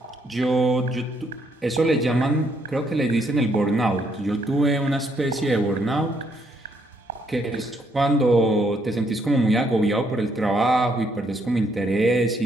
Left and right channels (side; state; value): both; normal; correlation 0.72